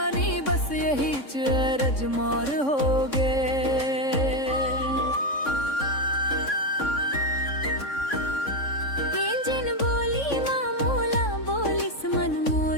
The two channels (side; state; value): right; late; 3.6 ms